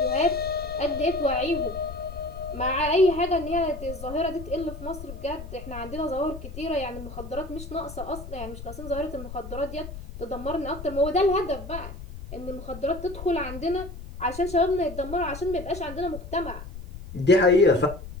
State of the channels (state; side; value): noise; left; rumble, 11 dB below the sound